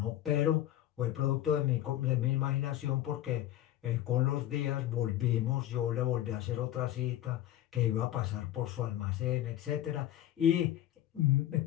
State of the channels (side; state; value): right; quieter; 12.9 dB